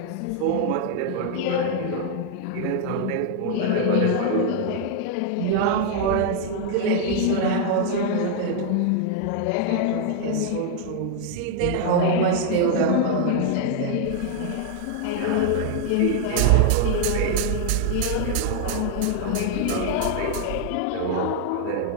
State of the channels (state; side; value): different; both; correlation 0.00